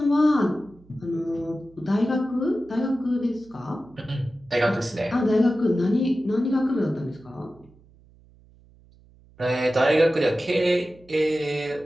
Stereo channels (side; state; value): right; noise; hum, 27 dB below the sound